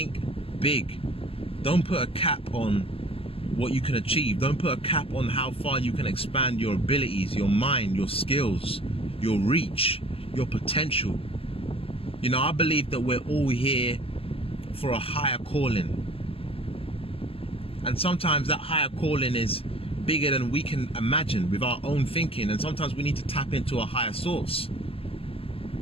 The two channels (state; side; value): late; right; 0.27 ms